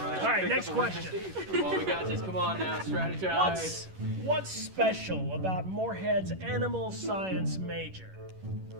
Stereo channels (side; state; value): left; late; 11 ms